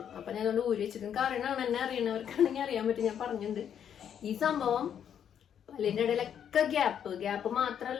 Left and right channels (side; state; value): right; quieter; 8.8 dB